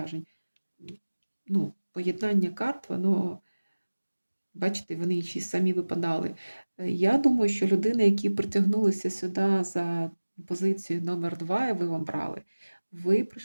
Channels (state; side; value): inverted; both; correlation -1.00